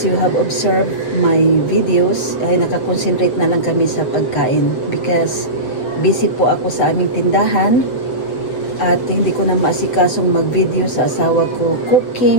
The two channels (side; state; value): right; late; 7.9 ms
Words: you have observed my videos, ay nakakonsentrate na lang kami sa pagkain because busy po ako sa aming tindahan at hindi ko na maasikasong mag-video sa asawa ko